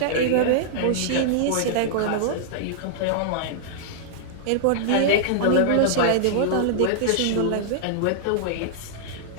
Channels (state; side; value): different; both; correlation -0.02